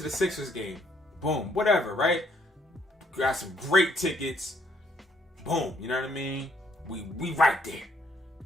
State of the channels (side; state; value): both; normal; correlation 0.67